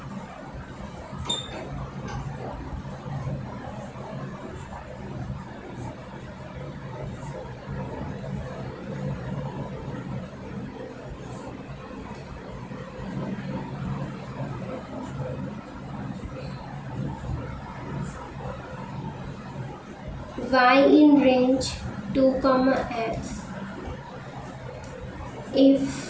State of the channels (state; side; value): identical; both; correlation 1.00